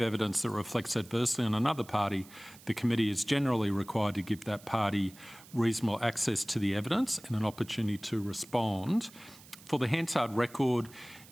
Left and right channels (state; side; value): noise; right; hiss, 21 dB below the sound